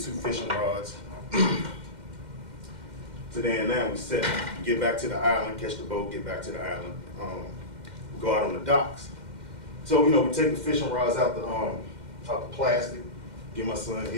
fishing rods. So then now we set, get back to the island, catch the boat, get back to the island, go out on the docks. So, we take the fishing rods out the plastic, give my son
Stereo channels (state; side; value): late; left; 2.1 ms